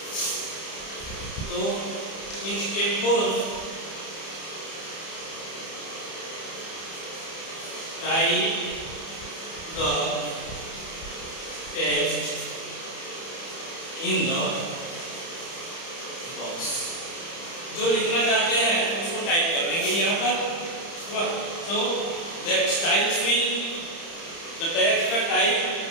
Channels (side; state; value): right; late; 30 ms